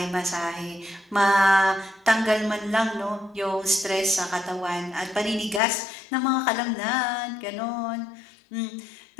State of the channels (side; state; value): right; drops out; at 5.6 s